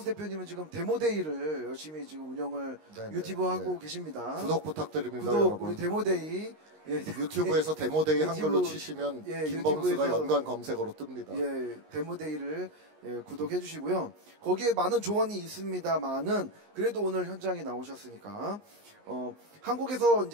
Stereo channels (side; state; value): left; late; 19 ms